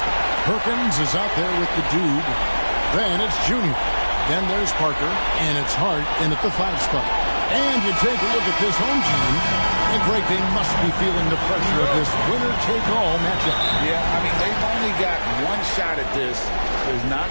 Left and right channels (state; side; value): inverted; both; correlation -1.00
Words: Perkins is out there with the Dude. Then it's Junior. Then there's Parker, and it's Hart in at the 5 spot. And you take a look at this home team, and Greg, they must be feeling the pressure of this winner-take-all matchup. Yeah, I mean, they've only got one shot at this. There's not